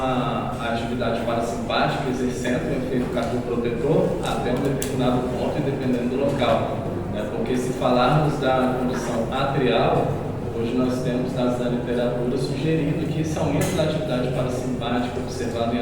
atividade parasimpática, exercendo um efeito cardioprotetor até um determinado ponto e dependendo do local. Né? Porque se falarmos da condição atrial, hoje nós temos dados da literatura sugerindo que esse aumento da atividade parasimpática observado em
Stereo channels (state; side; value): identical; both; correlation 1.00